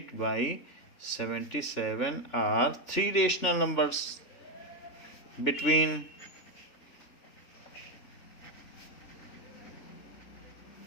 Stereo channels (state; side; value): late; right; 3.5 ms